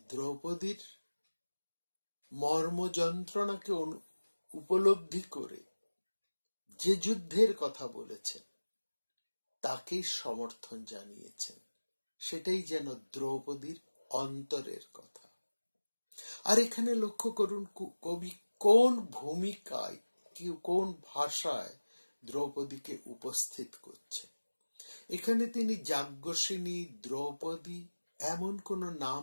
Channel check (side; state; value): both; inverted; correlation -1.00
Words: দ্রৌপদীর মর্ম যন্ত্রণাকে উপলব্ধি করে যে যুদ্ধের কথা বলেছেন তাকেই সমর্থন জানিয়েছেন, সেটাই যেন দ্রৌপদীর অন্তরের কথা। আর এখানে লক্ষ্য করুন কবি কোন ভূমিকায় কোন ভাষায় দ্রৌপদীকে উপস্থিত করছে। এখানে তিনি যাজ্ঞসিনী, দ্রৌপদী এমন কোন নাম